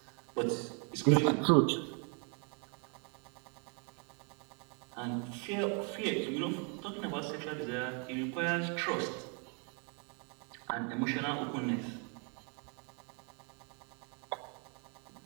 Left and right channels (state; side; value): quieter; left; 37.2 dB